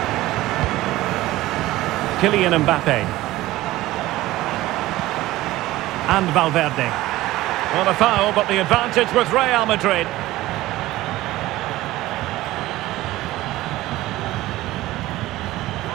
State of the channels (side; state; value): left; quieter; 17.0 dB